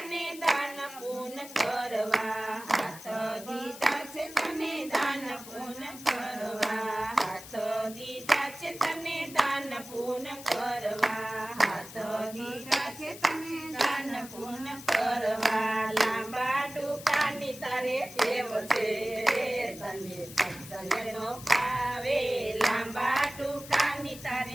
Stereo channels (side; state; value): left; noise; hiss, 15 dB below the sound